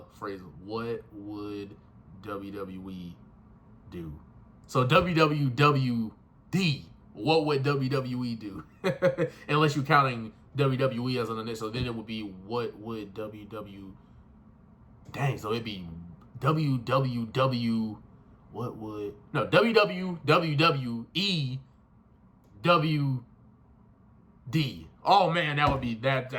phrase, what would WWE do? So WWWD, what would WWE do? Unless you're counting WWE as an initial, then it would be what would WW. Dang, so it'd be WWW. What would WWWE WD. Oh man, that would be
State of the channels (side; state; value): both; identical; correlation 1.00